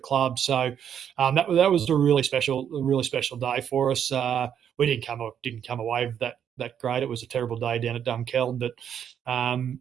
So that was a really special day for us. We didn't come away with that great. It was a terrible day down at Dunkeld,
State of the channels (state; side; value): quieter; left; 8.8 dB